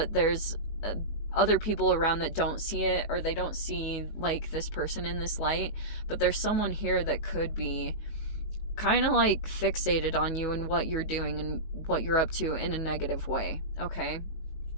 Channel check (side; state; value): right; late; 19 ms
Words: there's other people around that don't see it, or they don't see like this person in this light. But there's someone here that could be kind of like fixated on you and what you're doing and what you're up to in a negative way. Okay,